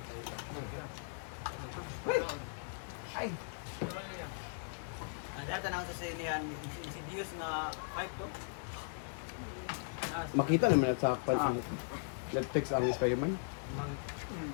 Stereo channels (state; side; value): silent; right; digital silence